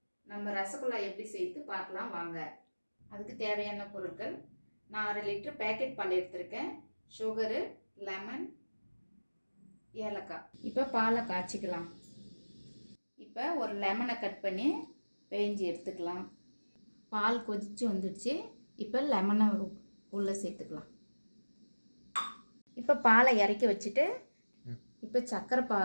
நம்ம ரசகுல்லா எப்படி செய்து பார்க்கலாம் வாங்க. அதுக்கு தேவையான பொருட்கள், நான் 1/2 லிட்டர் பேக்கெட் பால் எடுத்திருக்கேன், சுகரு, லெமன், ஏலக்காய். இப்போ பாலை காய்ச்சிக்கலாம். இப்போ ஒரு லெமனை கட் பண்ணி பேஞ்சி எடுத்துக்கலாம். பால் கொதிச்சு வந்துடுச்சு. இப்போ லெமனை உள்ளே சேர்த்துக்கலாம். இப்போ பாலை இறக்கி வச்சுட்டு இப்போ சர்க்கரை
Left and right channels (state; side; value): inverted; both; correlation -1.00